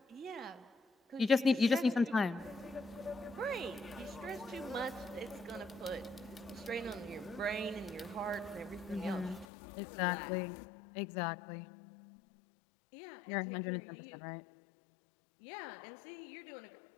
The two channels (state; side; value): drops out; right; at 9.5 s